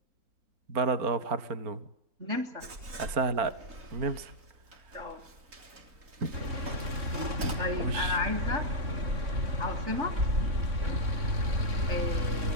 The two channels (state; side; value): late; left; 3.8 ms